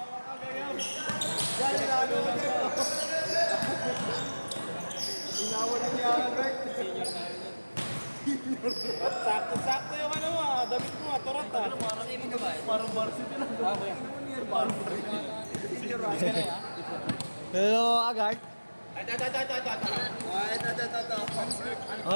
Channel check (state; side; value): inverted; both; correlation -1.00